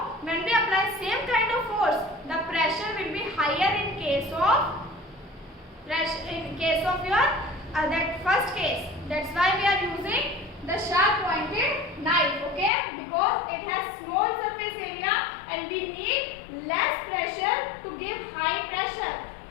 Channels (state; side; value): drops out; right; at 12.7 s